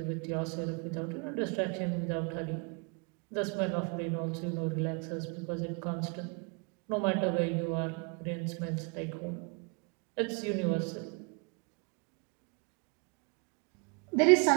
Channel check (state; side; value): quieter; left; 34.4 dB